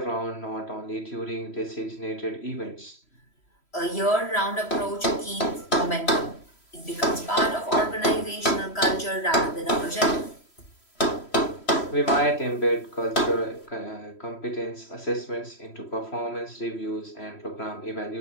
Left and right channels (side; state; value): right; late; 3.1 ms